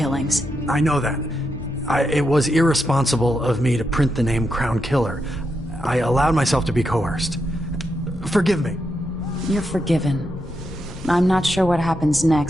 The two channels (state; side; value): normal; both; correlation 0.84